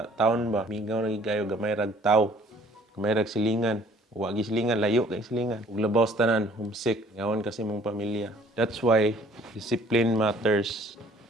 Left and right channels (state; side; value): normal; both; correlation 0.56